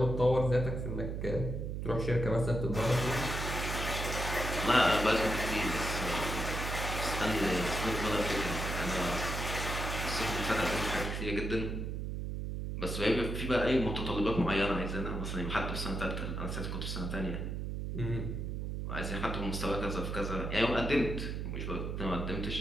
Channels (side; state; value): right; noise; hum, 3 dB below the sound